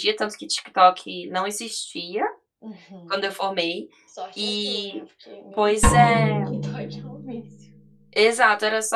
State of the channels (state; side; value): identical; both; correlation 1.00